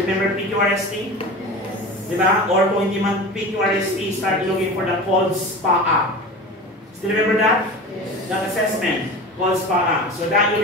PQRST? Yes. Diba? Or kung hindi man PQRST, start looking for the cold SPA. Still remember that? Yes. That assessment, cold SPA. So that will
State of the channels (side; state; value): both; normal; correlation 0.32